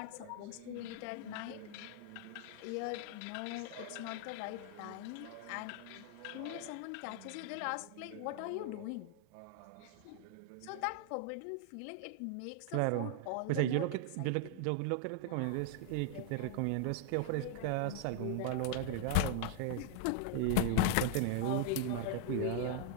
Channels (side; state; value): both; different; correlation 0.00